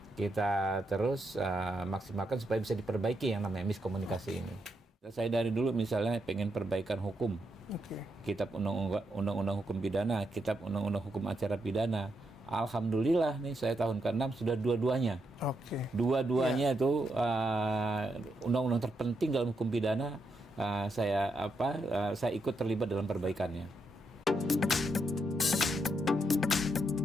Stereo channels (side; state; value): both; normal; correlation 0.81